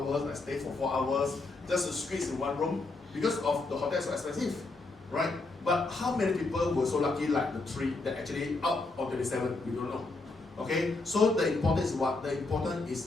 I stay for 4 hours, just to squeeze in one room because of the hotel is so expensive, right? But how many people were so lucky like the 3 that actually out of 27? We don't know. Okay, so the important is what? The important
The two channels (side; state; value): right; quieter; 3.4 dB